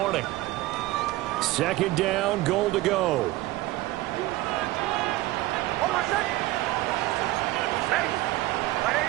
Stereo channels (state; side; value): quieter; left; 17.8 dB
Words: Second down, goal to go.